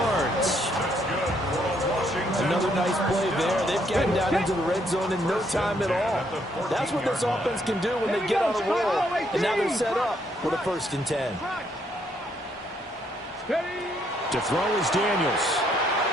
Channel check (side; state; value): both; normal; correlation 0.71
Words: Another nice play there. They've gotten down into the red zone in no time at all. That's what this offense can do when they get on a roll. And now they're set up with a 1st and 10. To throw is Daniels.